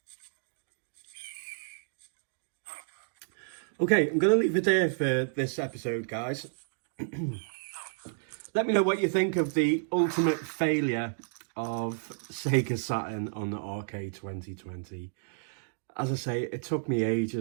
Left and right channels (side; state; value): left; silent; digital silence